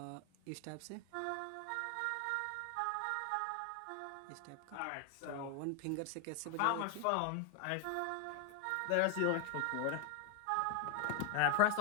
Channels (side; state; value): both; different; correlation 0.01